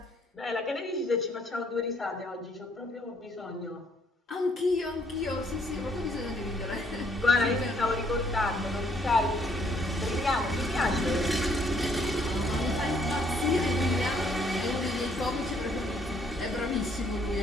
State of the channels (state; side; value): normal; both; correlation 0.67